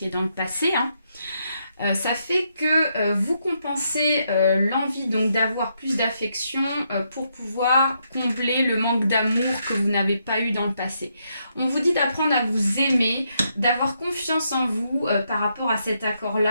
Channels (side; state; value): both; inverted; correlation -0.78